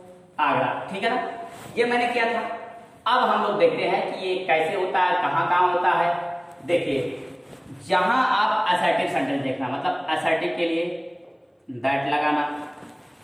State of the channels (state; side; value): identical; both; correlation 1.00